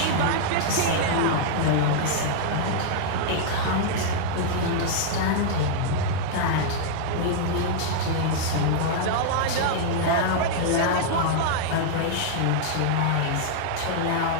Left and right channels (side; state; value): both; different; correlation -0.01